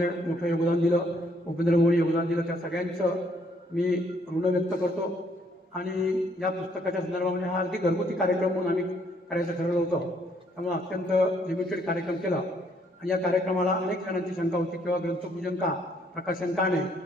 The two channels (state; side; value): normal; both; correlation 0.68